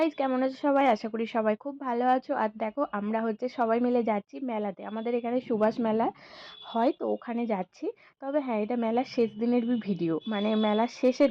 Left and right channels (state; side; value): identical; both; correlation 1.00